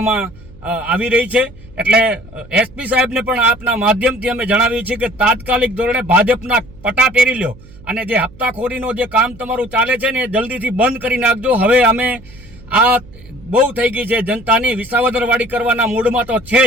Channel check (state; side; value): noise; right; hum, 21 dB below the sound